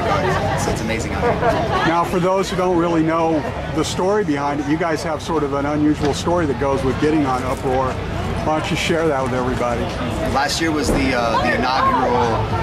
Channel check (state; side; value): identical; both; correlation 1.00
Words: It's amazing out here. Now, for those who don't really know the story behind it, you guys have sort of an unusual story that goes with getting on Uproar. Why don't you share that with everybody? Last year was the inaugural